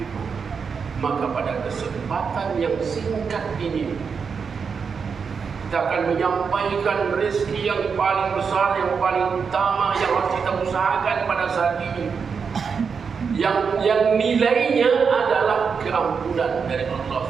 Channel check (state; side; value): quieter; left; 5.9 dB